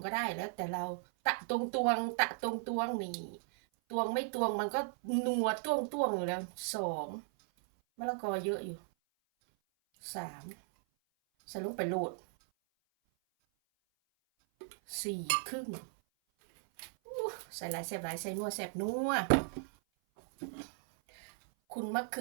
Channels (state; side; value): silent; left; 54 dB below the other